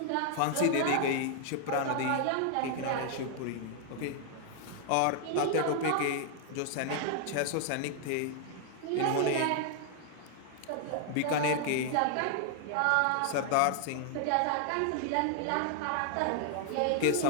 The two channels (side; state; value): both; different; correlation 0.00